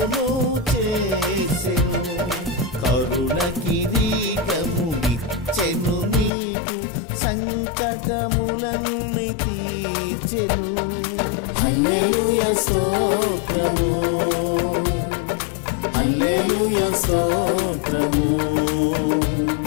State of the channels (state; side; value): drops out; right; at 6.3 s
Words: చేసెను, కరుణ కిరీటము ఇచ్చెను నీకు, సంకటములన్నీ తీర్చెను. హల్లెలూయా స్తోత్రము, హల్లెలూయా స్తోత్రము,